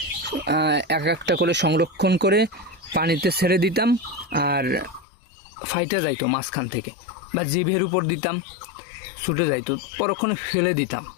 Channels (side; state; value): right; drops out; at 5.1 s